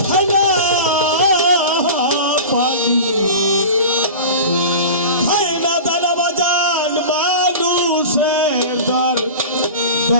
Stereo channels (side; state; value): both; inverted; correlation -0.32